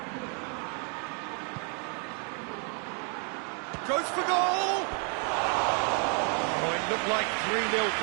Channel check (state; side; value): quieter; left; 38.4 dB